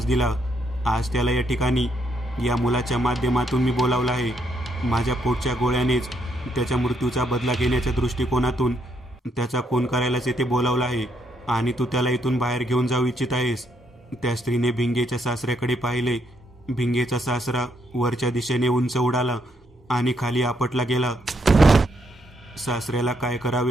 दिला. आज त्याला या ठिकाणी या मुलाच्या माध्यमातून मी बोलावलं आहे. माझ्या पोटच्या गोळ्यानेच त्याच्या मृत्यूचा बदला घेण्याच्या दृष्टिकोनातून त्याचा खून करायलाच येथे बोलावलं आहे आणि तू त्याला इथून बाहेर घेऊन जाऊ इच्छित आहेस. त्या स्त्रीने भिंगेच्या सासऱ्याकडे पाहिले. भिंगेचा सासरा वरच्या दिशेने उंच उडाला आणि खाली आपटला गेला. सासऱ्याला काय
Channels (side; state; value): both; normal; correlation 0.75